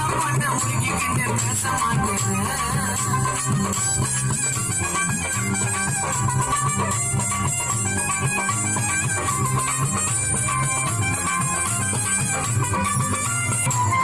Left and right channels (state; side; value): noise; right; rumble, 17 dB below the sound